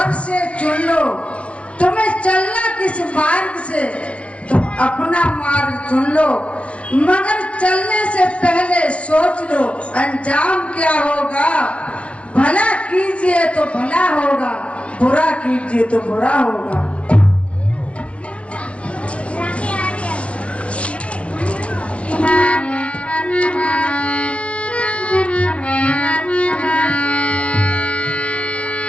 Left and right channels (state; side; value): late; right; 0.062 ms